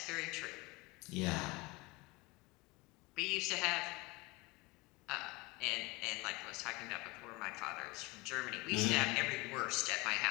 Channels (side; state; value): right; quieter; 24.1 dB